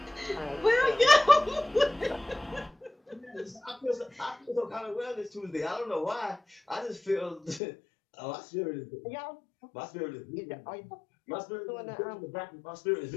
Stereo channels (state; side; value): drops out; right; at 7.6 s